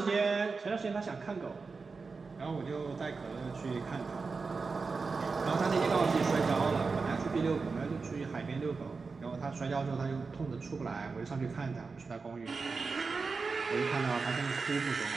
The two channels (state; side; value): quieter; left; 4.5 dB